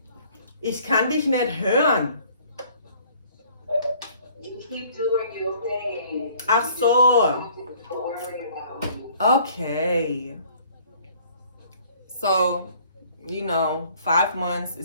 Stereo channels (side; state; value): both; inverted; correlation -0.56